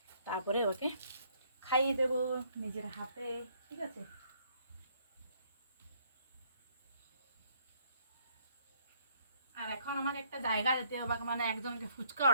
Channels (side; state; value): both; inverted; correlation -0.67